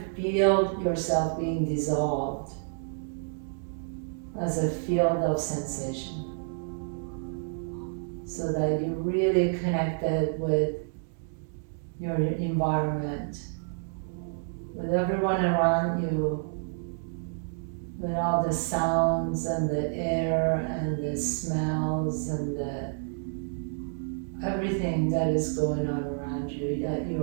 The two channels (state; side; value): silent; left; digital silence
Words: feel yourself being dissolved as a field of sensation, so that you're really connected with your environment, with everyone around you, with all the sounds and the air and the smells and everything that is going on around you, that